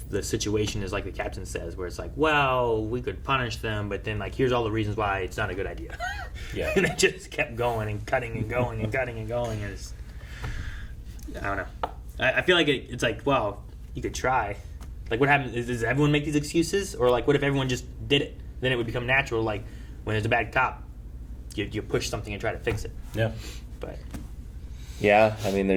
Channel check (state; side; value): identical; both; correlation 1.00